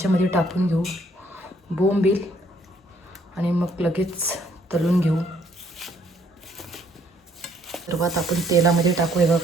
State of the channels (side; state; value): both; normal; correlation 0.66